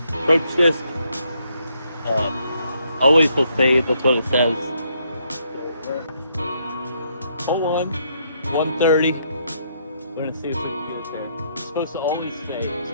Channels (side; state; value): both; inverted; correlation -0.73